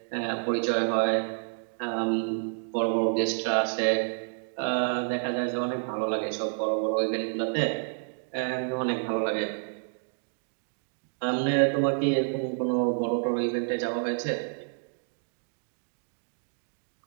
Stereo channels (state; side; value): silent; left; digital silence